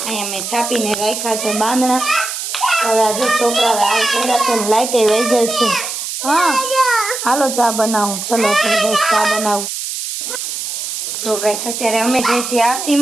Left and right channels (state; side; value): noise; right; hiss, 5 dB below the sound